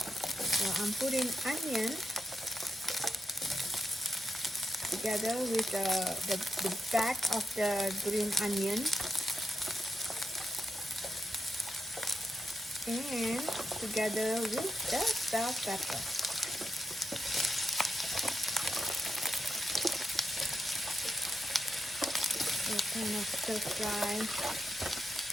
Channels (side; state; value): both; normal; correlation 0.84